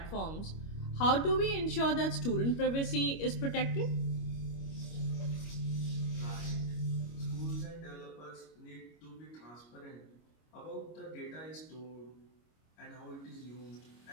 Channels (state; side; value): late; right; 25 ms